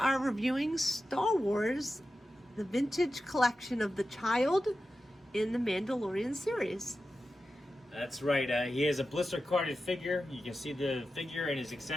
reviewing Star Wars, the vintage collection of the child in the Mandalorian series. That's right. He has a blister carded figure. You can see the figure and his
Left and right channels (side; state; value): both; normal; correlation 0.92